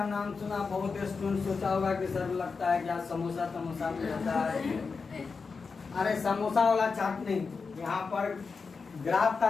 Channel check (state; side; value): quieter; right; 4.9 dB